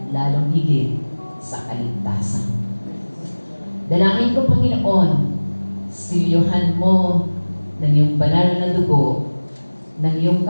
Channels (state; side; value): inverted; both; correlation -1.00